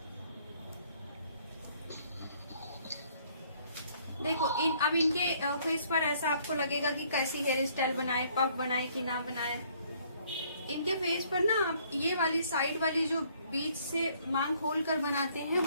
देखो अब इनके फेस पर ऐसा आपको लगेगा कि कैसी हेयर स्टाइल बनाए, पफ बनाए कि ना बनाए। इनके फेस पर ना आप ये वाली साइड वाली जो बीच से मांग खोल कर बनाते हैं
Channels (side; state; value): both; inverted; correlation -0.63